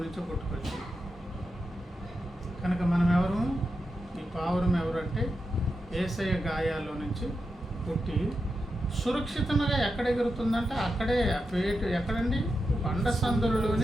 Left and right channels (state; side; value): normal; both; correlation 0.88